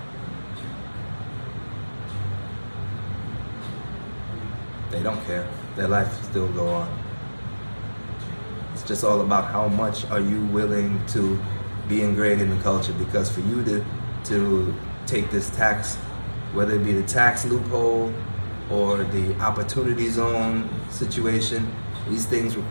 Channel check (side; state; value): both; inverted; correlation -1.00